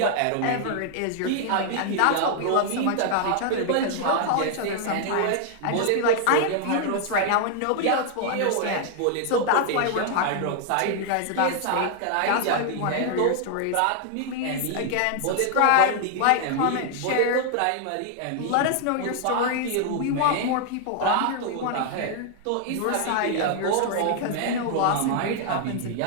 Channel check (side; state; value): both; different; correlation 0.00